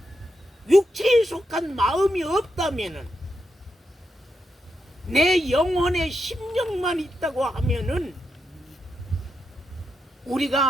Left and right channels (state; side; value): normal; both; correlation 0.84